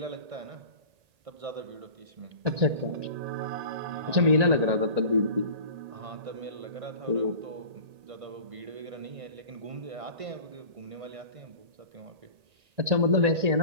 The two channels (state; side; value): late; left; 1.8 ms